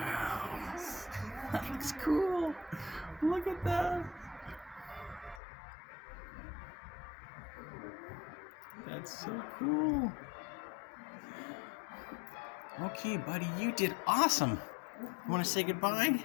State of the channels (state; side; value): drops out; right; at 5.4 s